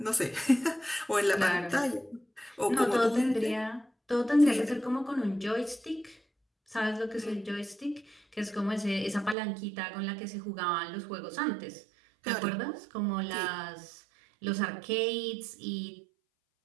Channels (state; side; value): drops out; left; at 9.3 s